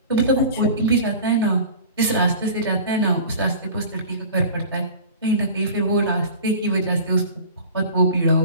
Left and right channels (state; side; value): inverted; both; correlation -0.39